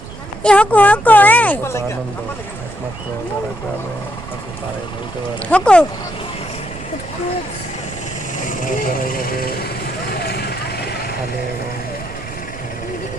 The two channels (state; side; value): noise; right; rumble, 13 dB below the sound